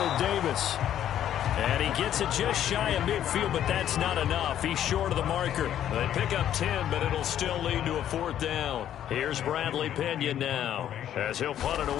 Davis. And he gets it just shy of midfield, but that's not enough. He's short of the marker. They pick up 10, but it'll still lead to a 4th down. Here's Bradley Pinion now, as he'll punt it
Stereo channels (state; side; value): quieter; right; 10.8 dB